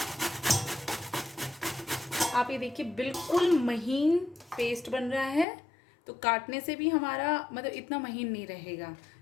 आप ये देखिए बिल्कुल महीन पेस्ट बन रहा है। तो काटने से भी हमारा मतलब इतना महीन नहीं रहेगा।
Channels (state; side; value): drops out; right; at 5.5 s